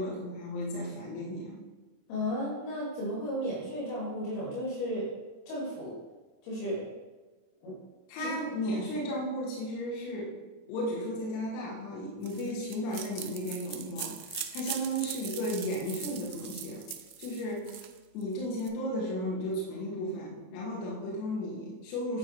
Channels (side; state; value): right; late; 27 ms